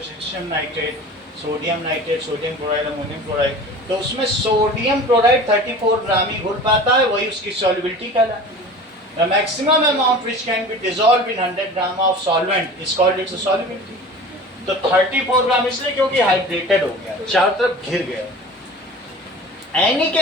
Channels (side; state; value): both; normal; correlation 0.39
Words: nitrate, sodium nitrate, sodium chloride, ammonium chloride. तो उसमें सोडियम क्लोराइड 34 ग्राम ही घुल पाता है, वही उसकी सॉल्युबिलिटी कहलाती है। The maximum amount which can be dissolved in 100 gram of solvent is called its solubility. तो 34 ग्राम इसलिए क्योंकि हाइड्रेटेड हो गया, चारों तरफ घिर गया। Any